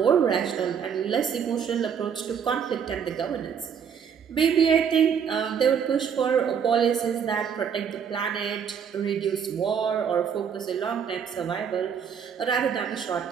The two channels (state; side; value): quieter; left; 7.4 dB